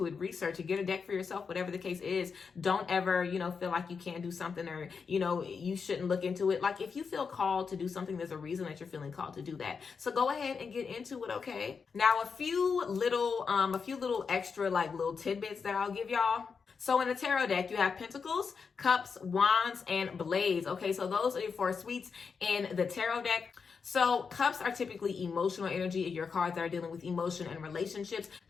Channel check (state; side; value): quieter; right; 5.6 dB